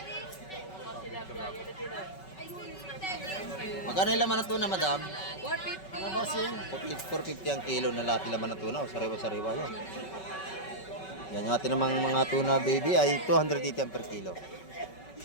Magkano yung laman ng tuna, madam? 450. 450 ang kilo na lahat laman ng tuna. Oh, sariwa-sariwa yan. Yan yung atin namang mga tuna baby ay 280 ang per kilo.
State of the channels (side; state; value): right; late; 5.3 ms